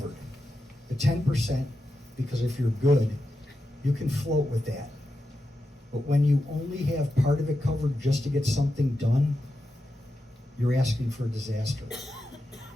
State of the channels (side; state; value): both; normal; correlation 0.89